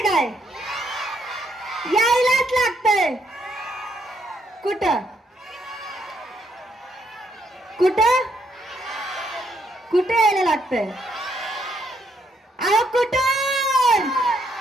काय? यायलाच लागतंय. कुठं कुठं कुठे यायला लागतंय? अहो कुठं?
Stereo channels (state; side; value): normal; both; correlation 0.73